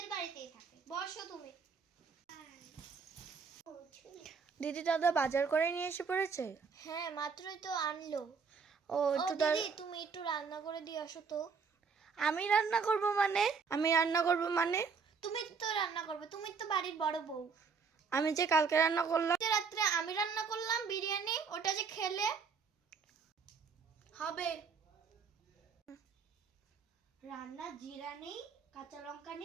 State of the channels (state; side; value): quieter; left; 5.6 dB